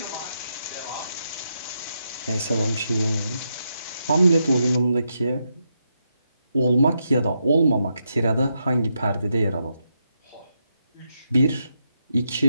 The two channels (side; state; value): both; inverted; correlation -0.83